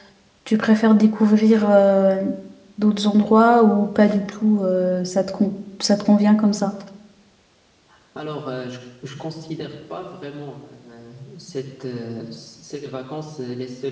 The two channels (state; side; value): identical; both; correlation 1.00